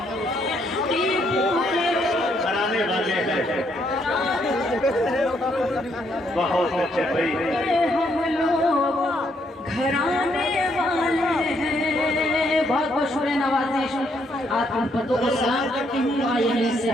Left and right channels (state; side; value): normal; both; correlation 0.73